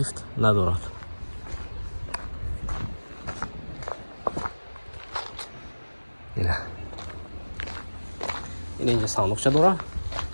ندارد. اینه اینجا صندوقچه داره.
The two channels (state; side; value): inverted; both; correlation -1.00